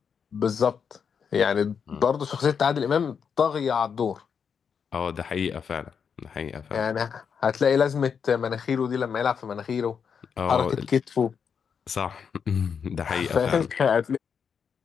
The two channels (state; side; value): quieter; right; 6.7 dB